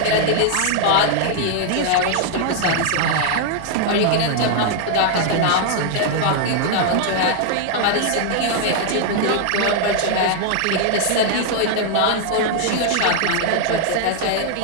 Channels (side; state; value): both; different; correlation 0.00